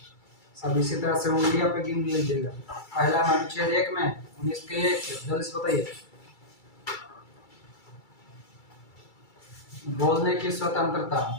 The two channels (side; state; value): right; late; 2.3 ms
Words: सब इसी तरह से उंगलियां पे गिन लीजिएगा। पहला अनुच्छेद 1 में 19 के 1 जल्दी से बताइए। बोलने की स्वतंत्रता।